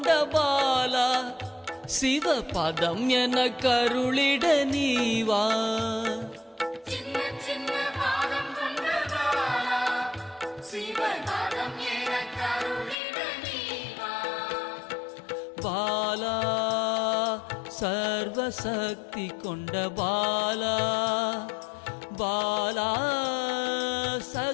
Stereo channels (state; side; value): drops out; right; at 13.0 s